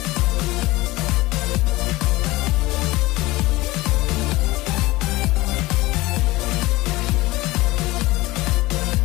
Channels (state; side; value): quieter; right; 19.8 dB